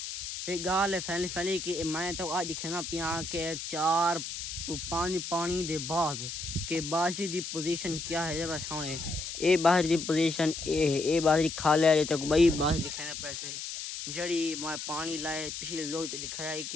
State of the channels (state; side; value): noise; left; hiss, 7 dB below the sound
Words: ایک گال ہے پھیلی کہ میں تو آج دکھنا پیا کہ 4 to 5 پانی دے بعد کہ بازی دی پوزیشن کیا ہے بس ہونے اے بازی دی پوزیشن اے بازی کھا لیا جے تک بئی بازی دکھانا پیسے جڑی میں پانی لائے پچھلے لوگ تو دکھایا